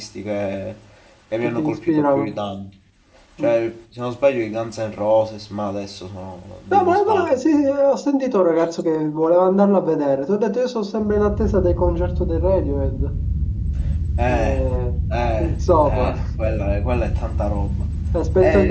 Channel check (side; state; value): both; identical; correlation 1.00